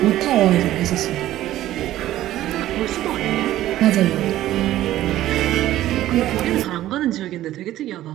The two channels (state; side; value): quieter; left; 14.1 dB